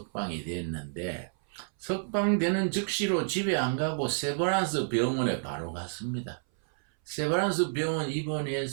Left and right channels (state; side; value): silent; left; 58 dB below the other